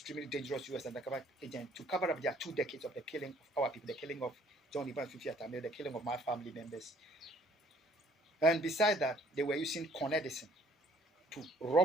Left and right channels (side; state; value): both; normal; correlation 0.59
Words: dangerous US undercover agent to cover up their 2 decades of the killing of our people, the killing of John Ivan Fifi Atamil, the killing of my family members. And besides that, they were using Con Edison to